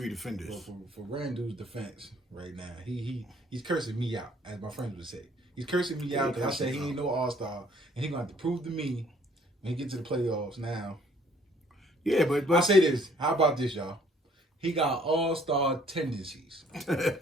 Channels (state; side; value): normal; both; correlation 0.60